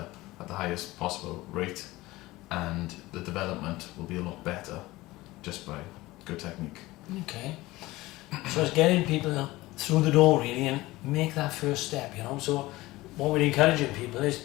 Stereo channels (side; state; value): right; quieter; 19.0 dB